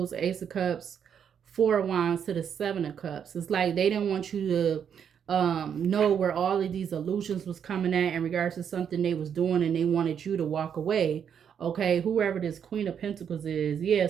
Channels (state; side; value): quieter; left; 8.0 dB